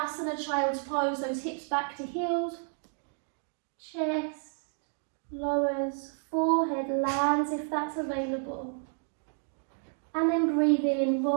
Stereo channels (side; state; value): left; silent; 57 dB below the other